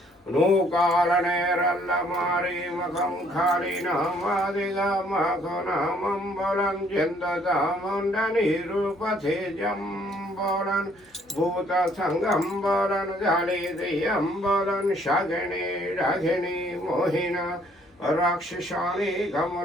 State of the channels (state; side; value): normal; both; correlation 0.63